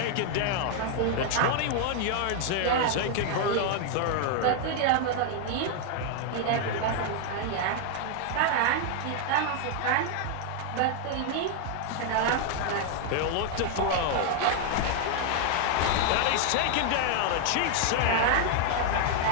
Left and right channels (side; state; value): both; different; correlation 0.00